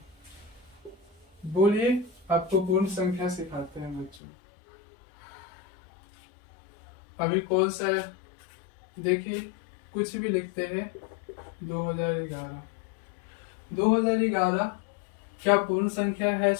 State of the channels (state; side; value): drops out; right; at 4.2 s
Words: बोलिए, आपको पूर्ण संख्या सिखाते हैं बच्चों। अभी कौन सा है? देखिए, कुछ भी लिखते हैं। 2011, 2011 क्या पूर्ण संख्या है